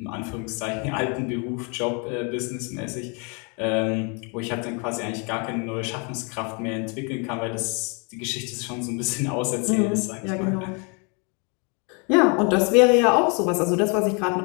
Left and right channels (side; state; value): right; quieter; 34.6 dB